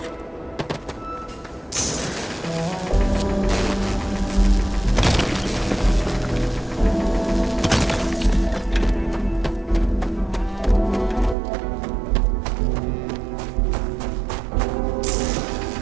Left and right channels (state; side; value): drops out; left; at 11.4 s